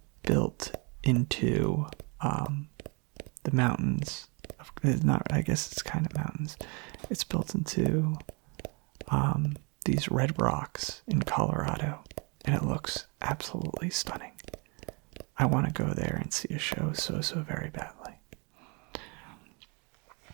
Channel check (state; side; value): quieter; left; 32.2 dB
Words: built into the mountains. It's not, I guess it's kind of mountains. It's built into these red rocks in Colorado, and it looks absolutely stunning. I want to go there and see a show so very badly.